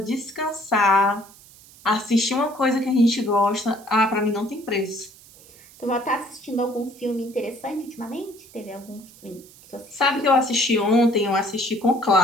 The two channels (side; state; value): right; noise; hiss, 23 dB below the sound